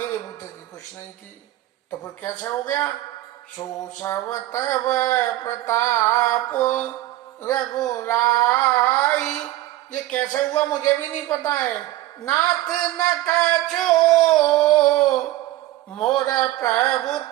बुद्धि की कुछ नहीं थी। तो फिर कैसे हो गया, सुसव तव प्रताप रघुराई। ये कैसे हुआ मुझे भी नहीं पता है। नाथ न कछो मोर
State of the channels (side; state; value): left; quieter; 16.0 dB